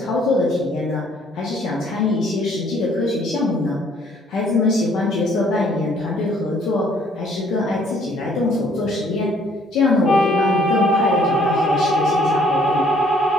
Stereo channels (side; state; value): both; normal; correlation 0.62